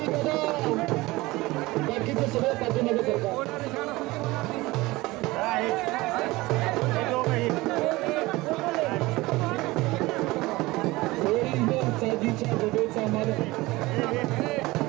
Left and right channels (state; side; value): quieter; left; 20.6 dB